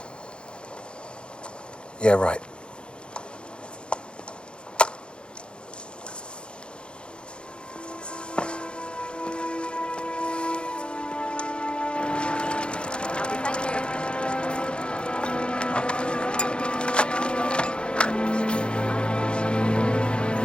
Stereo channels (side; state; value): right; late; 0.054 ms